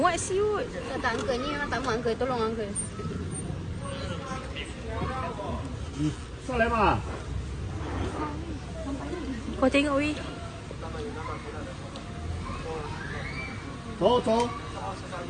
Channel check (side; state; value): both; identical; correlation 1.00